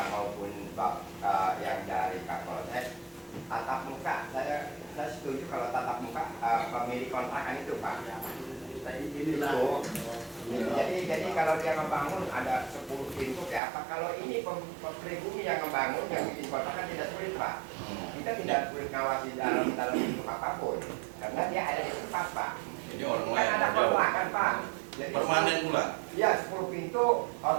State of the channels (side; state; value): left; drops out; at 13.6 s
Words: maupun yang dari Kapolsek tatap muka, saya setuju kalau tatap muka pemilik kontrakan itu Pak. Jadi kalau dia membangun ada 10 pintu kayak apa? Kalau ini pribumi yang membangun yang bikin kontrakan tidak sulit Pak. Kita tidak sulit ngawasi dalam pintu apapun karena dia ada di tempat Pak. Ini orang lain. Kan ada kontrakan Pak. Jadi, permanen pula. Iya 10 pintu